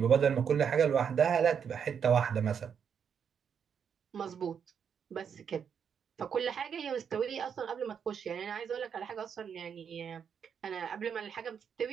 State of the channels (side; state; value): left; quieter; 7.4 dB